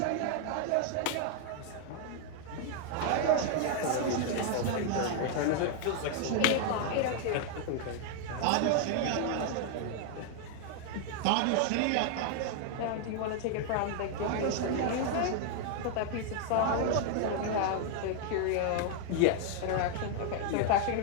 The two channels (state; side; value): different; both; correlation 0.00